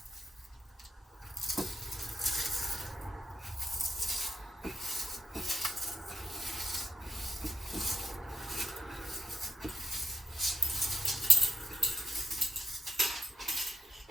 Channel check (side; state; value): both; normal; correlation 0.81